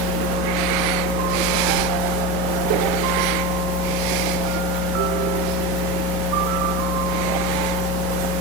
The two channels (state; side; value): normal; both; correlation 0.22